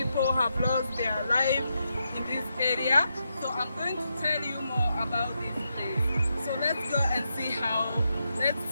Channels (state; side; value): inverted; both; correlation -0.84